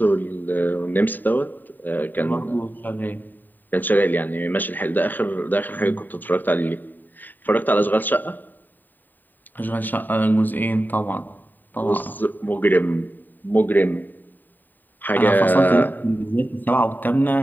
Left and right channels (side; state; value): right; late; 0.089 ms